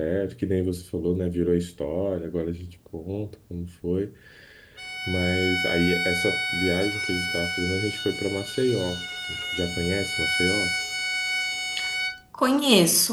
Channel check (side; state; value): both; identical; correlation 1.00